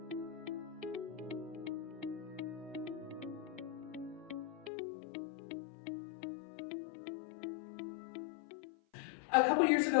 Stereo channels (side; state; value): right; drops out; at 4.7 s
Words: A couple years